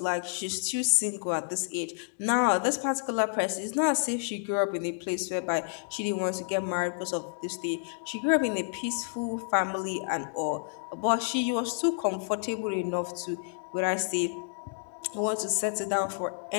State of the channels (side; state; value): right; silent; digital silence